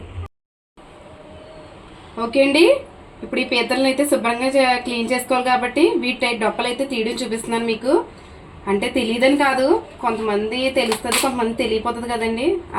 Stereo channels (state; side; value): identical; both; correlation 1.00